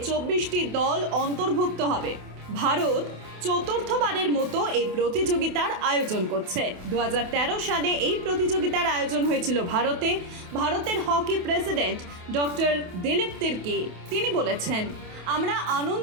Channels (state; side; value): late; left; 28 ms